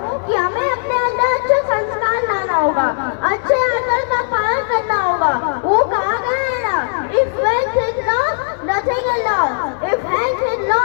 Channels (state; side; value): silent; right; digital silence